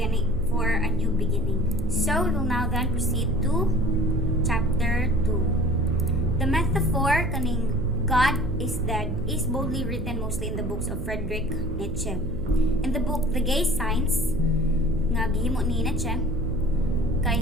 for a new beginning. So we will now then proceed to chapter 2. The metaphor kaning God is dead is boldly written mostly in the books of Fredrich Nietzsche. In the book The Gay Signs nga gihimo ni Nietzsche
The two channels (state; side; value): noise; right; hum, 7 dB below the sound